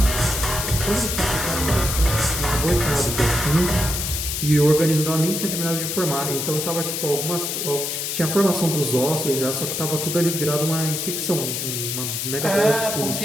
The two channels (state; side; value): noise; left; hiss, 2 dB below the sound